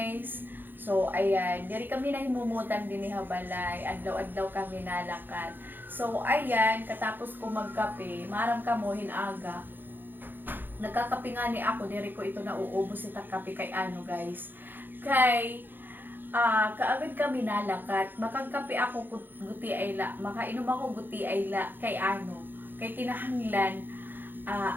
So, ayan. Diri kami na himumutan din ni Habalay. Adlaw-adlaw kami nalakat. So, ayan. Katapos ko magkape, maram ka mo hinaga. Nagkakape nga ni ako, diri ko ito nauubos ita kape kay ano guys. Kay kaagad kami nalakat, makagkape ako guti ayla, makainom ako guti ayla kay ano, kay kinahanglan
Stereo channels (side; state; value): left; late; 0.092 ms